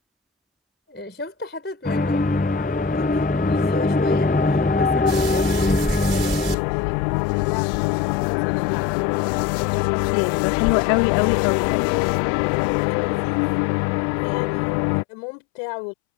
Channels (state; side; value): drops out; right; at 6.6 s